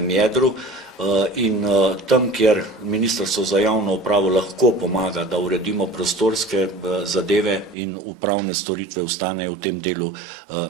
jedru in tam, kjer Ministrstvo za javno upravo lahko pomaga, da uredimo prostorske zadeve in upravne storitve ostanejo v tem delu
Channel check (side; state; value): left; drops out; at 7.8 s